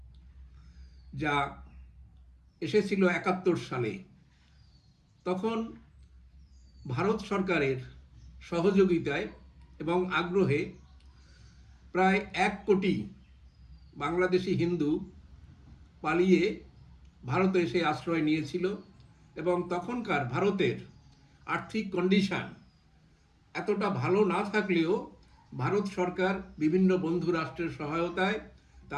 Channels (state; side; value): identical; both; correlation 1.00